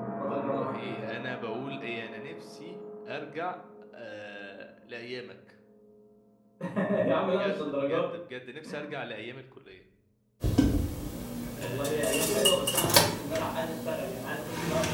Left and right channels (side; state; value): both; identical; correlation 1.00